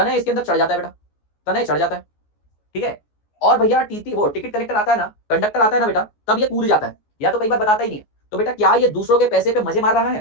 इसके अंदर चढ़ जाता है बेटा, तनय चढ़ जाता है, ठीक है। और भैया टीटी वो टिकट कलेक्टर आता है ना, कंडक्टर आता है ना बेटा, तब ये कूद जाता है, या तो कई बार बताता ही नहीं है। तो बेटा क्या ये दूसरों के पैसे पे मजे मार रहा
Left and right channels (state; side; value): late; right; 14 ms